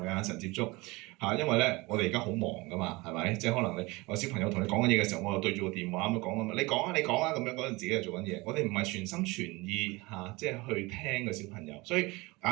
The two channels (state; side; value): quieter; left; 23.2 dB